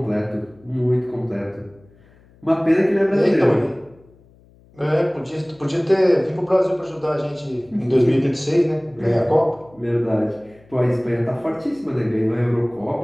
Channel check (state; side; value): noise; left; hum, 28 dB below the sound